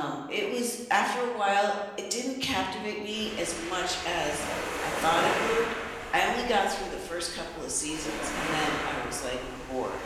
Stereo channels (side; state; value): both; identical; correlation 1.00